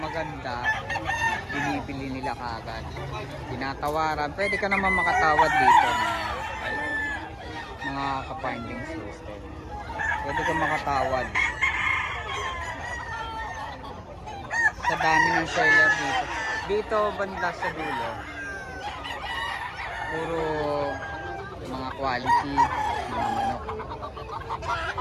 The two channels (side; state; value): both; identical; correlation 1.00